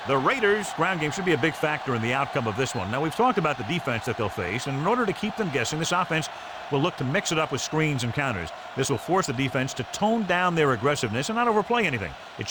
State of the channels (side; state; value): both; identical; correlation 1.00